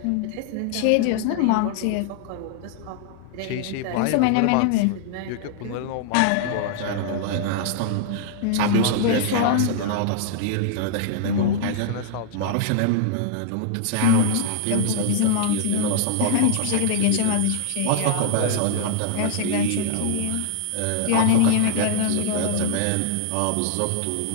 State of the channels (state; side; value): different; both; correlation -0.01